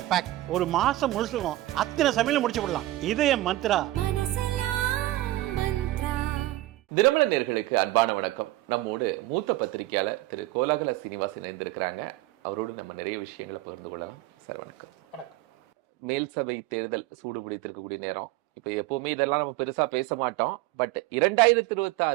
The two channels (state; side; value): quieter; left; 17.0 dB